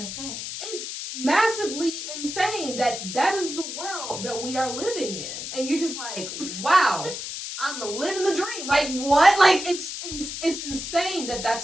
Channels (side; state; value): left; noise; hiss, 7 dB below the sound